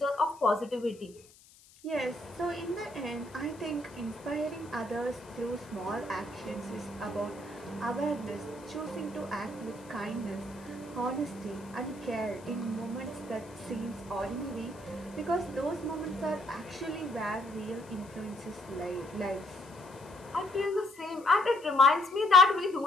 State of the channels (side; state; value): left; noise; hiss, 25 dB below the sound